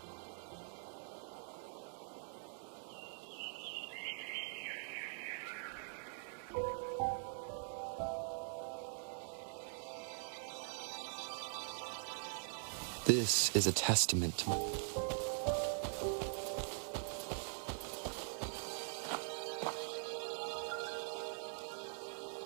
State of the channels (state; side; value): silent; left; digital silence